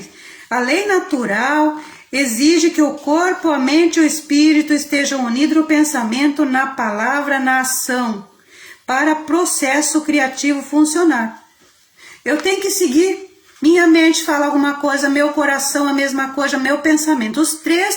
A lei natural exige que o corpo, a mente e o espírito estejam unidos no pensamento, na palavra, na ação, para o processo criativo funcionar. Eu tenho que seguir. Minha mente fala alguma coisa, meu coração a mesma coisa, meu pensamento. Os três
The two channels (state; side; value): identical; both; correlation 1.00